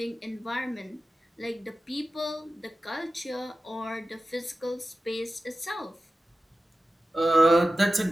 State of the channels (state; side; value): normal; both; correlation 0.94